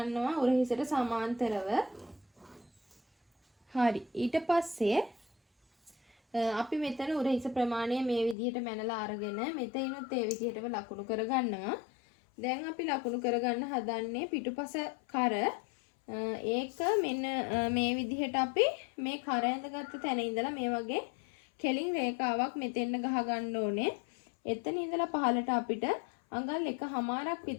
උර හිසට සමාන්තරව. හරි. ඊට පස්සේ අපි මෙතන උරහිස ප්‍රමාණය මේ විදිහට මැනලා අරගෙන මෙතනිනුත් ඒ විදිහටම ලකුණු කරගන්නවා. දැන් අපි ලකුණු කරගන්න හදන්නේ පිටුපස කර. ඒක මෙන්න මේ විදිහට අපි මේ කර ඇඳගත්ත තැන ඉඳලා මේ වගේ කෙලින් රේඛාවක් මෙතෙන්න ගහ ගන්න ඕනේ. එතන ඉඳලා පහලට අපිට අඟල් 1මාරක්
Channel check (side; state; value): right; drops out; at 8.3 s